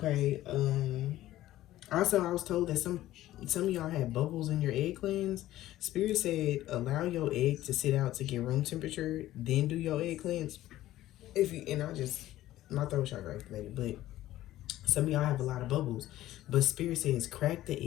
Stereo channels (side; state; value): right; quieter; 14.7 dB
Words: also, I was told that some of y'all had bubbles in your egg cleanse. Spirit said allow your egg to sit out to get room temperature, then do your egg cleanse. My throat chakra activated, but some of y'all have a lot of bubbles. But Spirit says crack the